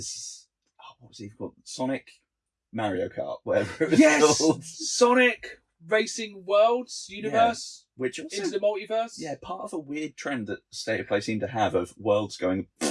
what was he called? Sonic Mario Kart, whatever it was Yes! called. Sonic Racing Worlds Universe Which also, into the multiverse. yeah, part of a weird trend that State of Play seemed to have of worlds going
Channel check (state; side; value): identical; both; correlation 1.00